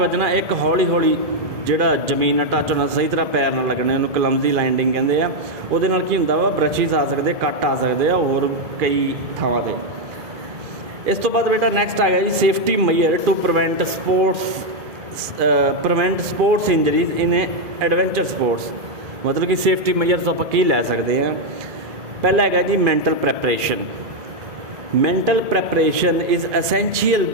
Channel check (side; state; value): left; late; 2.4 ms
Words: एक हौली हौली ਜਿਹੜਾ ਜ਼ਮੀਨ ਨਾਲ ਟੱਚ ਹੋਣਾ, ਸਹੀ ਤਰ੍ਹਾਂ ਪੈਰ ਨਾਲ ਲੱਗਣੇ, ਉਹਨੂੰ ਕਲਮਜ਼ੀ ਲੈਂਡਿੰਗ ਕਹਿੰਦੇ ਆ। ਉਹਦੇ ਨਾਲ ਕੀ ਹੁੰਦਾ ਵਾ, ਬ੍ਰਸ਼ਿਸ ਆ ਸਕਦੇ, ਕੱਟ ਆ ਸਕਦੇ ਆ ਹੋਰ ਕਈ ਥਾਵਾਂ 'ਤੇ। ਇਸ ਤੋਂ ਬਾਅਦ ਬੇਟਾ ਨੈਕਸਟ ਆ ਗਿਆ ਜੀ safety measure to prevent sports injuries in adventure sports. ਮਤਲਬ ਕਿ ਸੇਫਟੀ ਮੇਜਰਸ ਆਪਾਂ ਕੀ ਲੈ ਸਕਦੇ ਹਾਂ। ਪਹਿਲਾ ਹੈਗਾ ਜੀ mental preparation. Mental preparation is essential